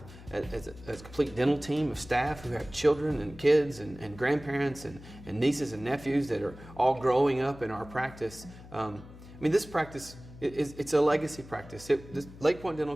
as a complete dental team of staff who have children and kids and grandparents and nieces and nephews that are all growing up in our practice. This practice, it's a legacy practice. Lake Point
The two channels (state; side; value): noise; left; hum, 18 dB below the sound